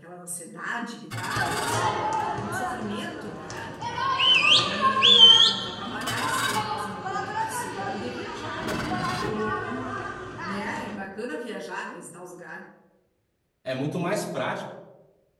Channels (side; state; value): both; identical; correlation 1.00